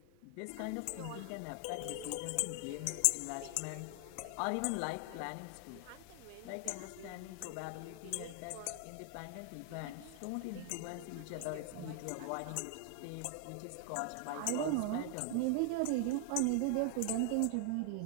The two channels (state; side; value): different; both; correlation 0.00